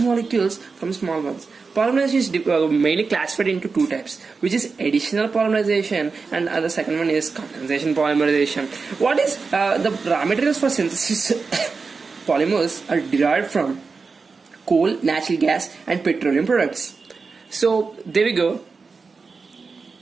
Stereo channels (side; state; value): left; quieter; 4.6 dB